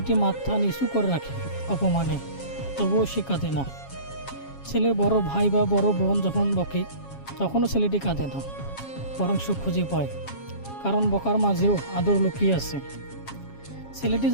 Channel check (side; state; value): right; late; 7.3 ms